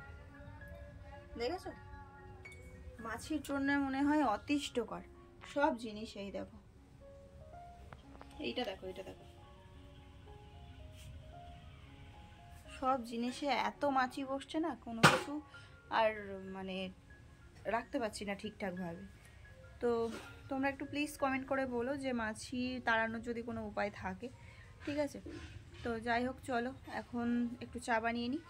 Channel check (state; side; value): identical; both; correlation 1.00